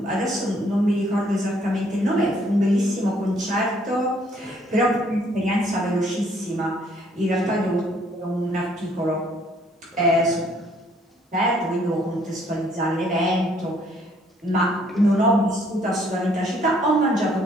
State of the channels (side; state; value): both; normal; correlation 0.64